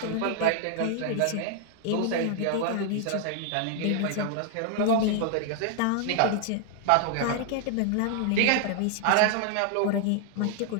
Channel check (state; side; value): different; both; correlation 0.00